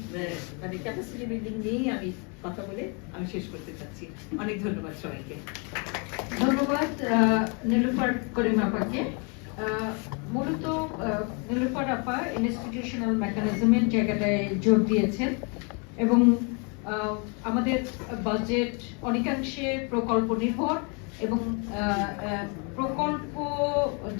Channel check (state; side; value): quieter; right; 34.9 dB